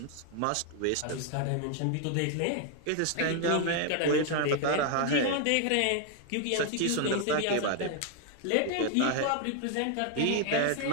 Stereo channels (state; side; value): different; both; correlation 0.00